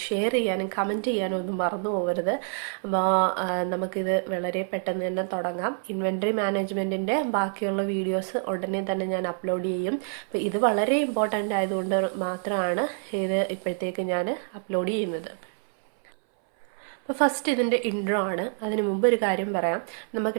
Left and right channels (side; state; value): left; silent; 59 dB below the other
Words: ഷെയർ ചെയ്യാനും കമൻറ്റ് ചെയ്യാനും ഒന്നും മറന്നു പോകരുത്. അപ്പോൾ നമുക്കിത് വളരെ പെട്ടെന്ന് തന്നെ തുടങ്ങാം. ഇൻവെൻട്രി മാനേജ്മെൻറ്റിൻ്റെ ബാക്കിയുള്ള വീഡിയോസ് ഉടനെ തന്നെ ഞാൻ അപ്ലോഡ് ചെയ്യും. അപ്പോൾ ഇത് വളരെ ഇമ്പോർട്ടൻ്റ് ആയതുകൊണ്ട് മാത്രമാണ് ഇത് ഇപ്പോഴത്തേക്ക് ഞാൻ അപ്ലോഡ് ചെയ്യുന്നത്. അപ്പോൾ ഫസ്റ്റ് ഇതിൻ്റെ ഇൻട്രോ ആണ്. അതിന് മുമ്പ് ഒരു കാര്യം പറയാം.